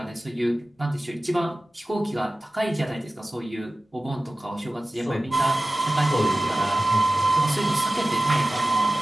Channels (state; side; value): normal; both; correlation 0.95